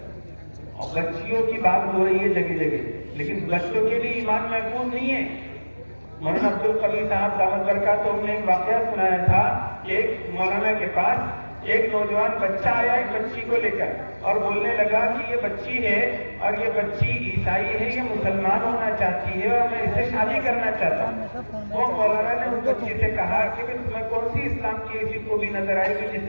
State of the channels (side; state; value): both; inverted; correlation -1.00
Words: اور بچیوں کی بات ہو رہی ہے جگہ جگہ، لیکن بچوں کے لیے ایمان محفوظ نہیں ہے. مولانا عبدالقوی صاحب دامت برکاتہ نے ایک واقعہ سنایا تھا کہ ایک مولانا کے پاس ایک نوجوان بچہ آیا ایک بچی کو لے کر اور بولنے لگا کہ یہ بچی ہے اور یہ بچی عیسائی ہے، یہ مسلمان ہونا چاہتی ہے اور میں اس سے شادی کرنا چاہتا ہوں. وہ مولانا نے اس بچی سے کہا کہ تمہیں کون سی اسلام کی ایسی خوبی نظر آئی کہ جس